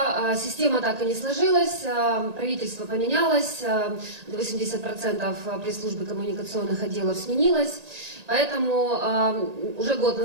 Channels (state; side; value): late; left; 1.8 ms